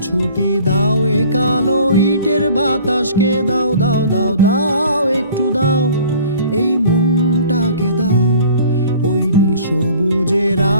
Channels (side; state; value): both; inverted; correlation -0.50